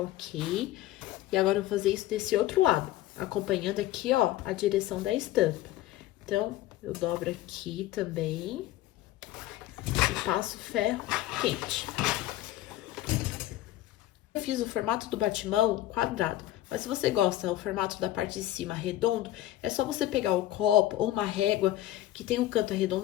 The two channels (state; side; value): quieter; right; 14.6 dB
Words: E agora, eu vou fazer isso desse outro lado, acompanhando aqui, ó, a direção da estampa. Então, eu dobro aqui também e passo ferro quente. Eu fiz o formato do batimão quadrado, mas se você gosta do formato da parte de cima redondo, é só você pegar o copo ou uma régua que tem um canto